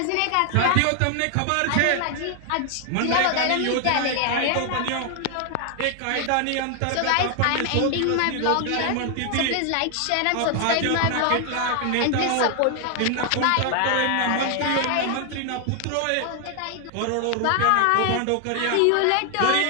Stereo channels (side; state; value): both; different; correlation 0.00